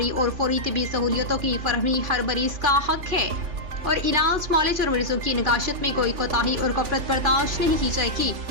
اور فوری طبی سہولیتوں کی فراہمی ہر مریض کا حق ہے اور علاج، معالجے اور مریضوں کی نگہداشت میں کوئی کوتاہی اور غفلت برداشت نہیں کی جائے گی۔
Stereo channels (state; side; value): late; left; 3.5 ms